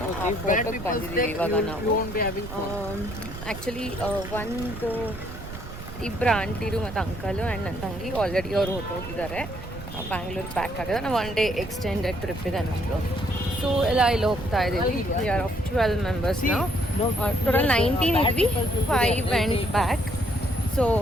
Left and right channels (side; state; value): right; noise; rumble, 11 dB below the sound